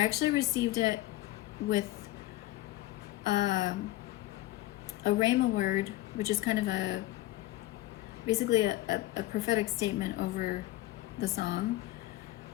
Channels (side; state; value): right; quieter; 16.6 dB